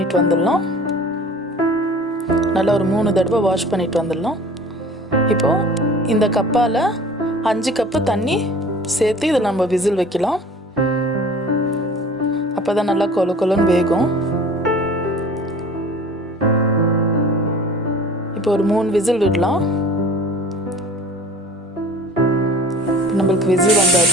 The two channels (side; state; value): both; normal; correlation 0.44